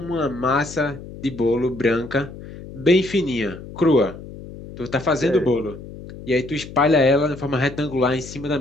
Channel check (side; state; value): left; noise; hum, 14 dB below the sound